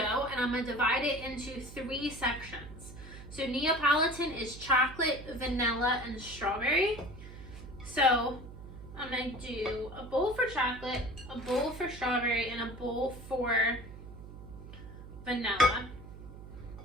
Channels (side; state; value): right; noise; hum, 14 dB below the sound